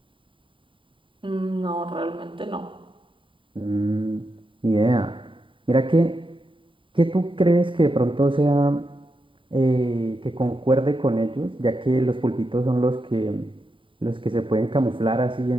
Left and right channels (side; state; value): left; late; 0.25 ms